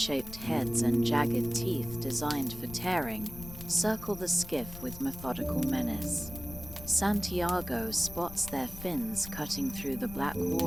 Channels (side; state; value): left; noise; rumble, 13 dB below the sound